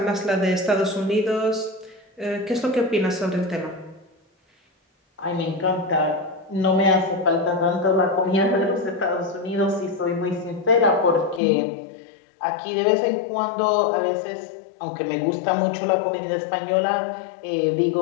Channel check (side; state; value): right; drops out; at 11.4 s